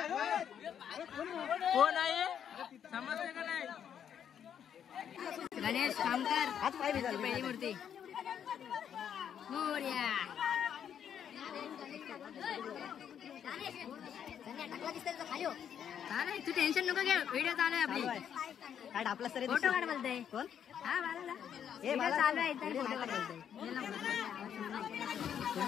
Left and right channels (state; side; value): quieter; right; 8.8 dB